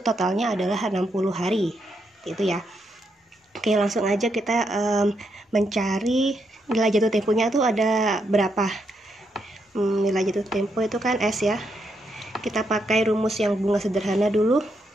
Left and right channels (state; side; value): normal; both; correlation 0.79